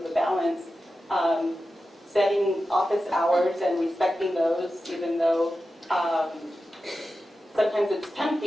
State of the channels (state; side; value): normal; both; correlation 0.92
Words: the balance. setting office hours and respecting those, even though sometimes it's